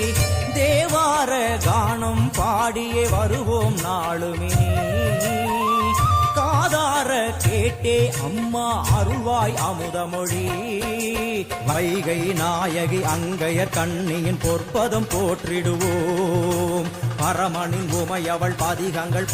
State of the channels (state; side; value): identical; both; correlation 1.00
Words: தேவ தேவார கானம் பாடியே வருவோம் நாளுமே காதார கேட்டே அம்மா அருள்வாய் அமுதமொழி வைகை நாயகி அங்கையர் கண்ணியின் பொற்பதம் போற்றிடுவோம் பரமனின் உமையவள் பதிகங்கள்